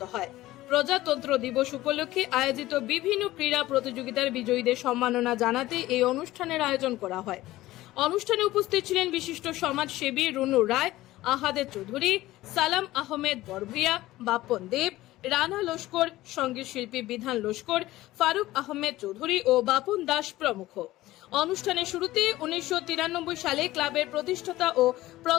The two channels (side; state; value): right; quieter; 16.7 dB